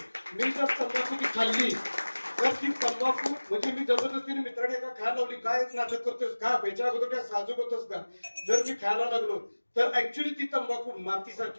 मी जर तंबाखू ती खाल्ली तर ती तंबाखू म्हणजे मी जबरदस्तीने मित्राने का खायला लावली, काय नाटक करतोस का, याच्या अगोदर काय साजूक होतस का, जर मी खायला लागलो तर ऍक्च्युली ती तंबाखू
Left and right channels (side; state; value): both; inverted; correlation -1.00